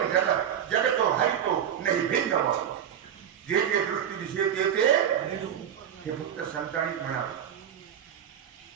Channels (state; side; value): quieter; left; 9.3 dB